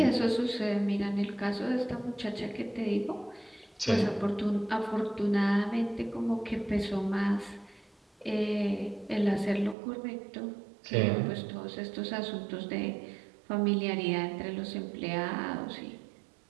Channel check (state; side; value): drops out; left; at 9.8 s